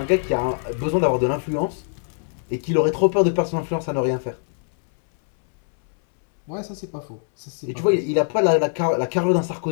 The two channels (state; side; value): silent; right; 64 dB below the other